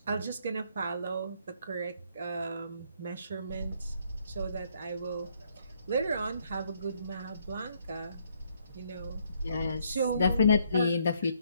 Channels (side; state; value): both; inverted; correlation -0.70